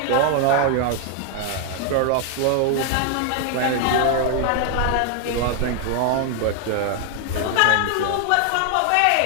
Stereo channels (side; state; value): both; different; correlation 0.00